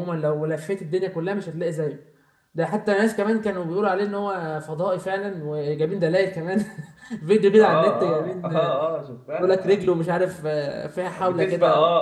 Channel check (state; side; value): identical; both; correlation 1.00